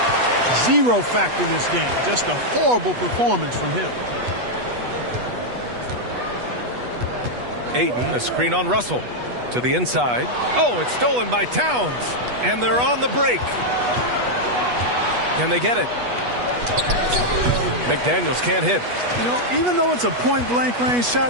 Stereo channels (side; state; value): left; late; 8.2 ms